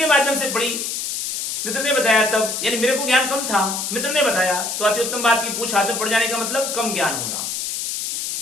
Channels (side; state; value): left; noise; hiss, 3 dB below the sound